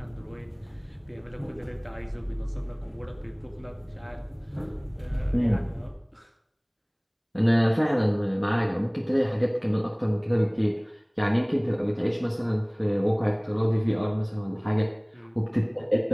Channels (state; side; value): identical; both; correlation 1.00